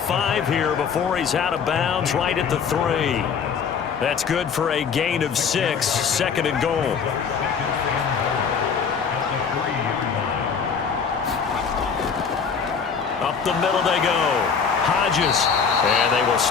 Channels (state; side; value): quieter; right; 6.3 dB